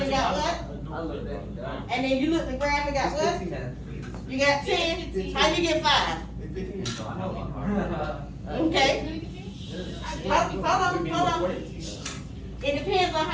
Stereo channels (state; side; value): identical; both; correlation 1.00